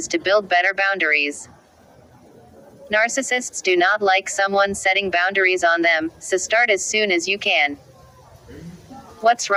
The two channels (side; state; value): both; identical; correlation 1.00